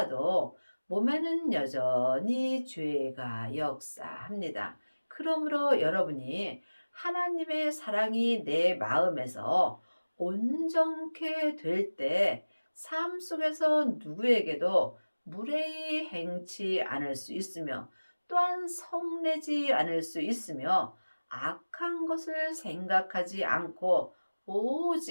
몸에는 여전히 죄가 역사합니다. 그러므로 여러분이 하나님의 사랑이 내 마음에서 온전케 될 때 삶 속에서 누구에게도 무례히 행치 않을 수 있으며 또한 성내지 않을 수 있으며 악한 것을 생각하지 않고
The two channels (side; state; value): both; inverted; correlation -1.00